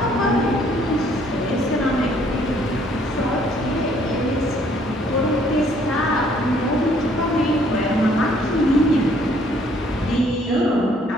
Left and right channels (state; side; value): normal; both; correlation 0.63